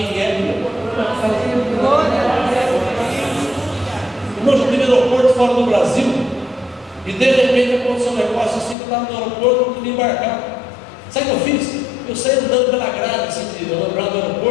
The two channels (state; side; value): drops out; right; at 8.8 s